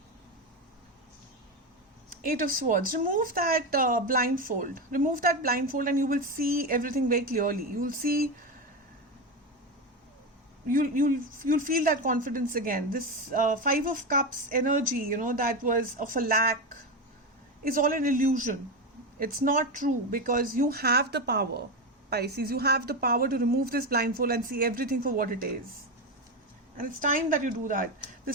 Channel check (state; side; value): normal; both; correlation 0.15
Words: Eight of Swords. Remove that blindfold. Remove that blindfold and you will see everything very clearly. You will see, you'll feel that confidence again. This Five of Cups energy, that was of a lack, is all an illusion. It's not true because you have the power. Pisces, you have the power to remove this blindfold and see everything for what it is. And it's time that you do that.